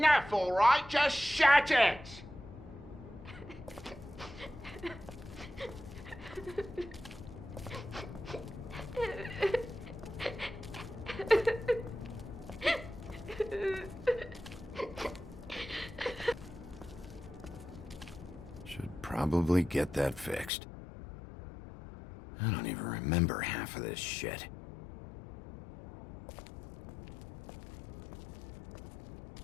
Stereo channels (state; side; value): drops out; right; at 20.5 s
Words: all right? Just shut it! Should probably get that fixed. I don't even remember half of this shit.